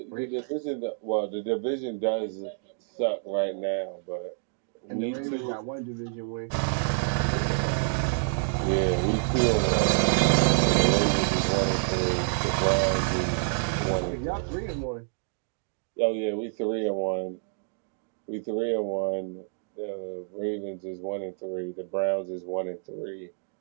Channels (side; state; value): left; silent; 59 dB below the other